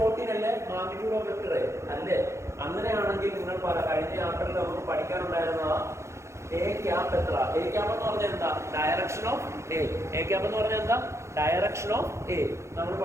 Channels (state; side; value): late; left; 0.14 ms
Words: അല്ലേ മാഗ്നിറ്റ്യൂഡ് ഓഫ് വെക്ടർ അല്ലേ അങ്ങനെയാണെങ്കിൽ നിങ്ങൾ കഴിഞ്ഞ ചാപ്റ്ററിൽ നമുക്ക് പഠിക്കാനുണ്ടായിരുന്ന എ ക്യാപ്പ് എത്ര എ ക്യാപ്പ് എന്ന് പറഞ്ഞാൽ എന്താ ഡയറക്ഷൻ ഓഫ് എ ക്യാപ്പ് എന്ന് പറഞ്ഞാൽ എന്താ ഡയറക്ഷൻ ഓഫ് എ നമ്മൾ